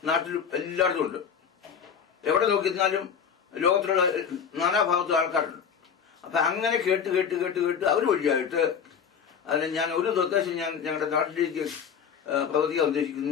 നാട്ടിലും എല്ലായിടത്തും ഉണ്ട്. എവിടെ നോക്കിയിരുന്നാലും ലോകത്തിലുള്ള നാനാഭാഗത്തും ആൾക്കാരുണ്ട്. അപ്പൊ അങ്ങനെ കേട്ട് കേട്ട് കേട്ട് കേട്ട് അവർ വഴിയായിട്ട് അതിന് ഞാൻ ഒരു നിർദ്ദേശം ഞാൻ ഞങ്ങളുടെ നാട്ടിലേക്ക് പ്രവർത്തിക്കാൻ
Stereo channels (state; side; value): quieter; right; 7.2 dB